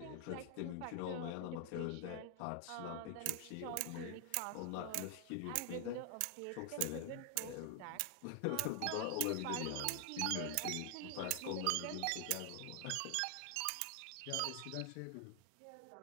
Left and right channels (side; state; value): both; different; correlation 0.00